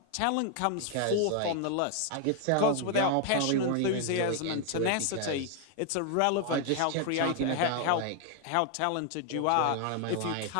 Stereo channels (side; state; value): both; different; correlation 0.00